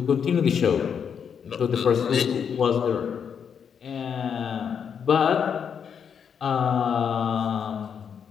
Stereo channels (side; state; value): right; quieter; 7.3 dB